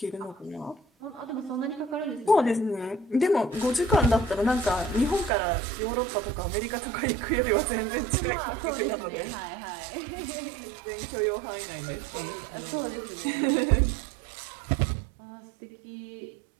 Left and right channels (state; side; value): drops out; left; at 5.3 s